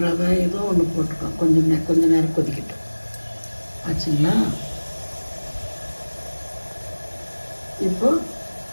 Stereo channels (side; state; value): both; inverted; correlation -1.00